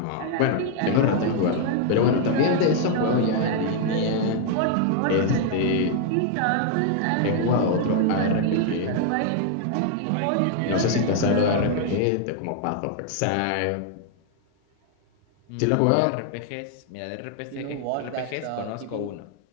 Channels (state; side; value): different; both; correlation 0.00